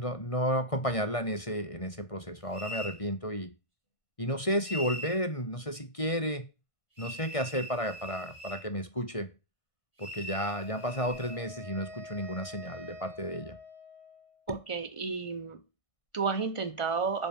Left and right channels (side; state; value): right; late; 1.6 ms